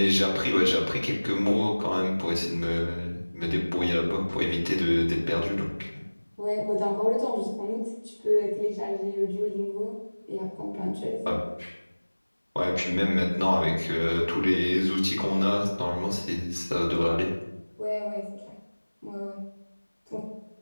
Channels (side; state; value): both; inverted; correlation -1.00